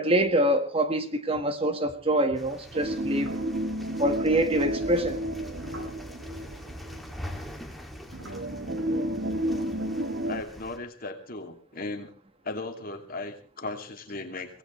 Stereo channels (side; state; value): both; normal; correlation 0.32